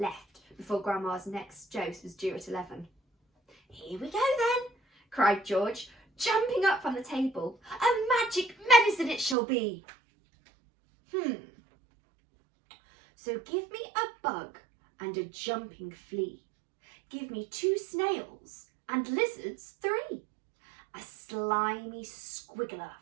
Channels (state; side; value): drops out; left; at 9.3 s